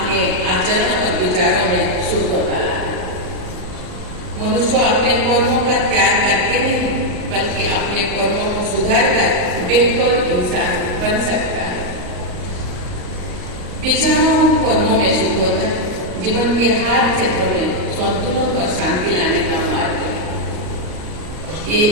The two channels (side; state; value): left; late; 38 ms